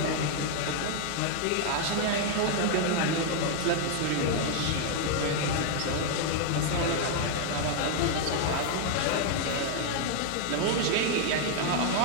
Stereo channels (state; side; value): different; both; correlation 0.00